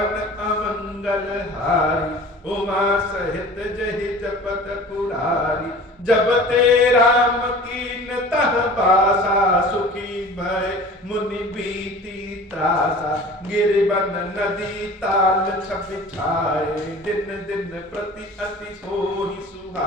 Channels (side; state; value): both; normal; correlation 0.42